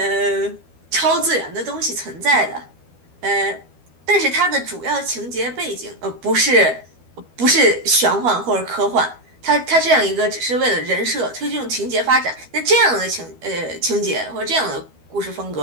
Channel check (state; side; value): late; left; 12 ms